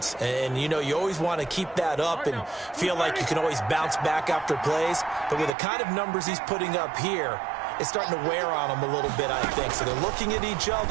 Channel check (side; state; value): left; drops out; at 5.5 s